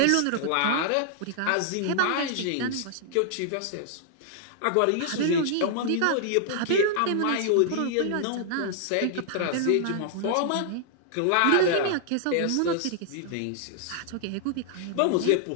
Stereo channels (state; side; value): different; both; correlation -0.01